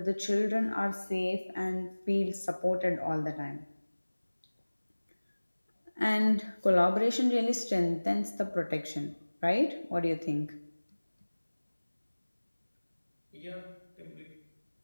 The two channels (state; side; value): inverted; both; correlation -1.00